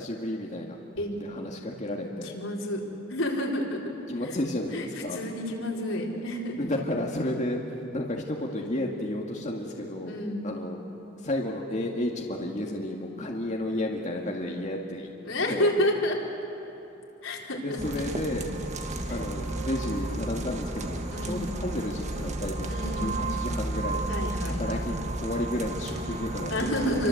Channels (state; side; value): normal; both; correlation 0.43